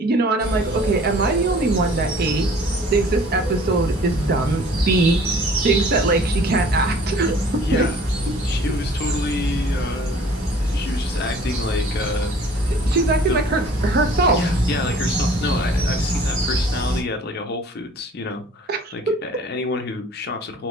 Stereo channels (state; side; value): normal; both; correlation 0.51